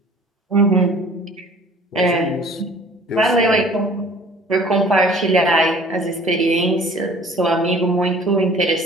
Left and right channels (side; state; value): both; normal; correlation 0.50